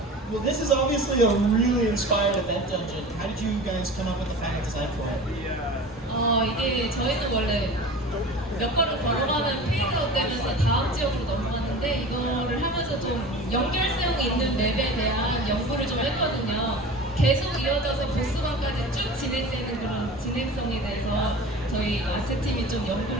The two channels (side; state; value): both; normal; correlation 0.37